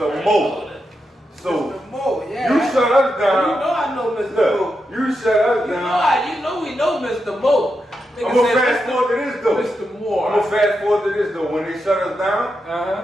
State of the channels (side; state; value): both; normal; correlation 0.86